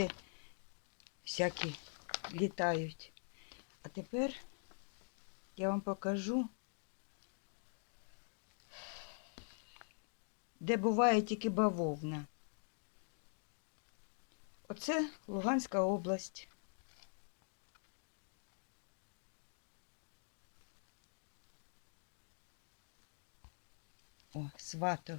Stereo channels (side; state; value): right; silent; digital silence